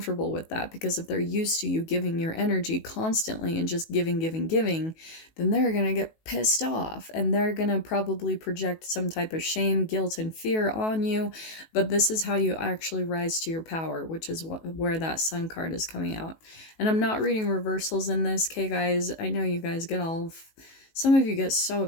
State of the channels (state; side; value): late; right; 18 ms